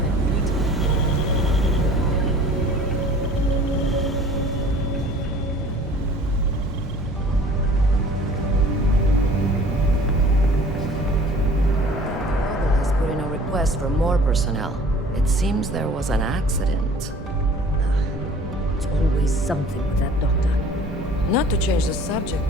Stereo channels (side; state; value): both; normal; correlation 0.48